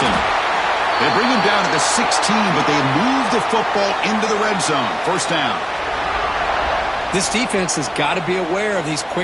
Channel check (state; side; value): identical; both; correlation 1.00